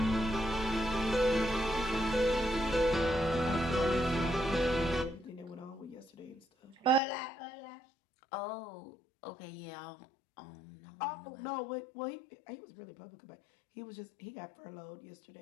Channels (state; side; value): drops out; right; at 7.0 s